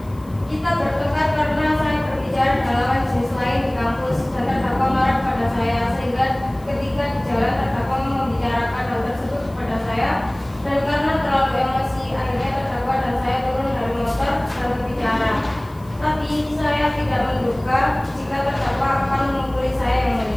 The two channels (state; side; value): noise; left; hiss, 28 dB below the sound